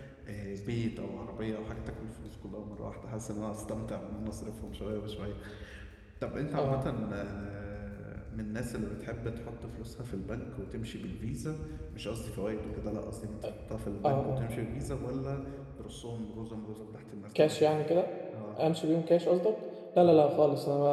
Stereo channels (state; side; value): identical; both; correlation 1.00